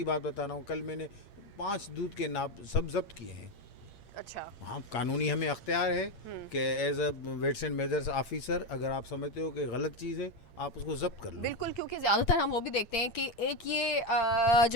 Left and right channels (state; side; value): late; right; 8.7 ms